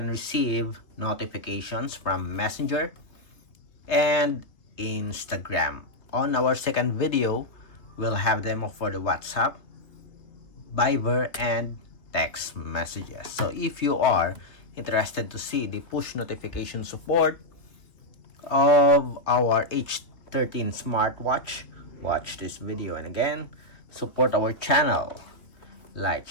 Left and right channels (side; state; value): right; late; 3.1 ms